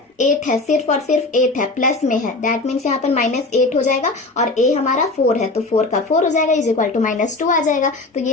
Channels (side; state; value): right; quieter; 3.2 dB